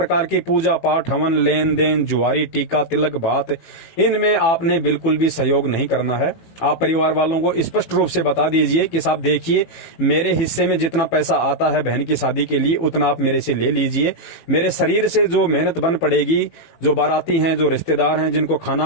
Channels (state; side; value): late; right; 18 ms